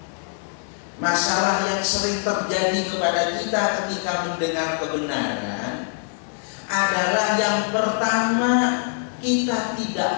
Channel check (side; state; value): right; silent; 55 dB below the other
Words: Masalah yang sering terjadi kepada kita ketika mendengar kebenaran adalah yang pertama, kita